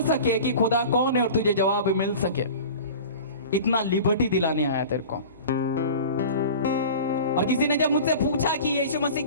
सके कि खुदा कौन है और तुझे जवाब मिल सके। इतना लिबर्टी दिलाने आया तेरे को। और किसी ने जब मुझसे पूछा कि यीशु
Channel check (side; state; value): both; inverted; correlation -0.37